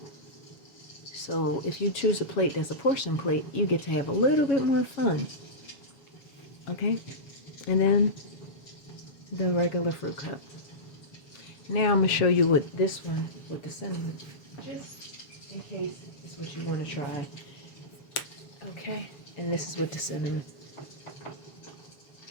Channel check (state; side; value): late; right; 7.1 ms